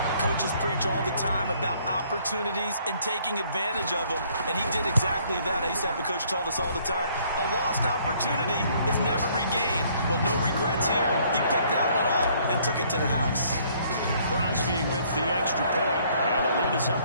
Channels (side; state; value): both; inverted; correlation -0.63